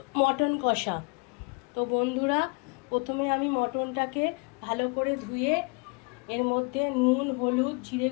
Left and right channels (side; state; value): right; quieter; 32.0 dB